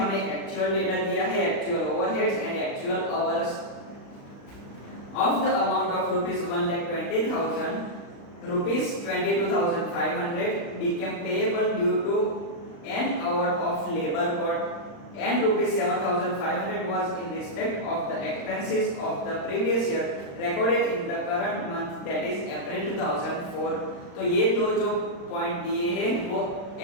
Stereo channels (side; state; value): right; late; 35 ms